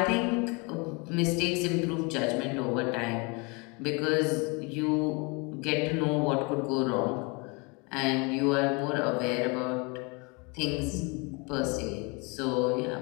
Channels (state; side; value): quieter; right; 29.7 dB